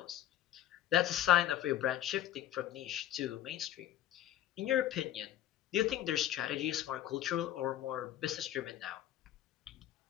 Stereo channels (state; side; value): quieter; right; 12.5 dB